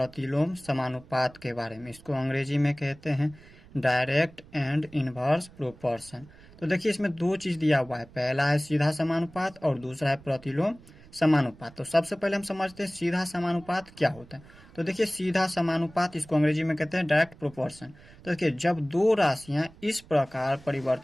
समानुपात के बारे में। इसको अंग्रेजी में कहते हैं डायरेक्ट एंड इनवर्स प्रोपोर्शन। तो देखिए इसमें दो चीज दिया हुआ है, पहला है सीधा समानुपात और दूसरा है प्रतिलोम समानुपात। तो सबसे पहले हम समझते हैं सीधा समानुपात क्या होता है। तो देखिए सीधा समानुपात इसको अंग्रेजी में कहते हैं डायरेक्ट प्रोपोर्शन। तो देखिए जब दो राशियां इस प्रकार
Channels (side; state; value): right; noise; rumble, 23 dB below the sound